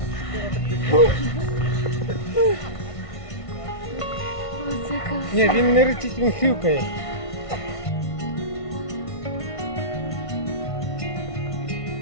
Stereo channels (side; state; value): right; late; 1.5 ms